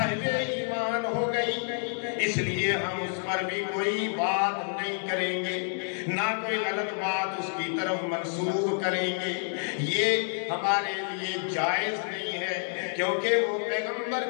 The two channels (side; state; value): right; silent; digital silence